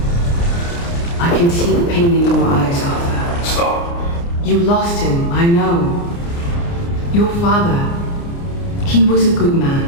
I can see the pain in your eyes, Arthur. Stop. You lost him, I know. Your father, he was a good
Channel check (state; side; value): late; right; 29 ms